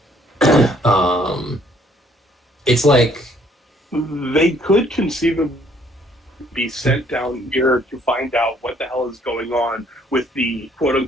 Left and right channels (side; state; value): both; normal; correlation 0.64